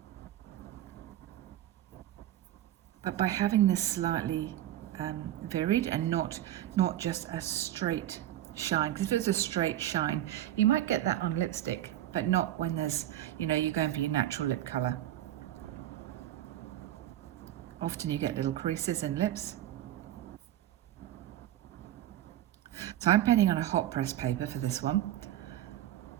But by having this slightly varied and not just a straight shine, because if it's a straight shine, you might get that on lipstick, but not when there's, you're going for your natural lip colour. Often you get little creases in lips. So I'm painting on a hot press paper for this one.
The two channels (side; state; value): left; quieter; 12.9 dB